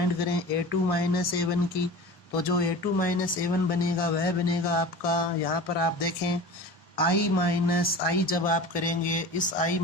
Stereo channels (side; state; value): both; normal; correlation 0.35